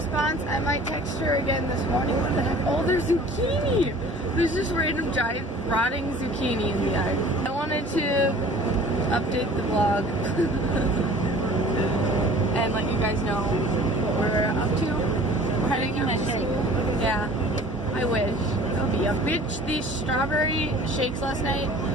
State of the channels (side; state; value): both; normal; correlation 0.47